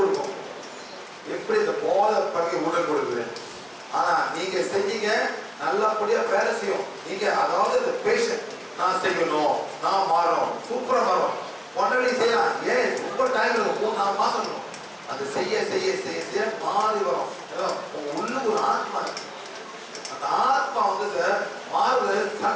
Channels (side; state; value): both; identical; correlation 1.00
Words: எப்படி இந்த போதை பழக உடல் கொடுக்குது. ஆனா நீங்க செஞ்சீங்க, நல்லபடியா வேலை செய்யும். நீங்க அதாவது இந்த பேஷண்ட் நான் செய்யணும், நான் மாறும், சூப்பரா மாறும். ஒன்றரை செய்யலாம், ஏன் ரொம்ப டைம் இருக்கும், 4 மாசம் இருக்கும். அது செய்ய செய்ய செய்ய செய்ய மாறி வரும். உங்க உள்ளுக்கு ஒரு ஆத்மா இருக்கு. அந்த ஆத்மா வந்து சார் மாறுது,